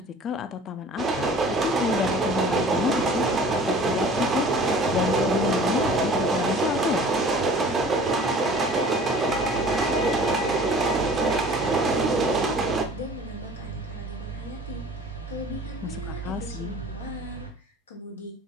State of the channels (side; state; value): both; normal; correlation 0.46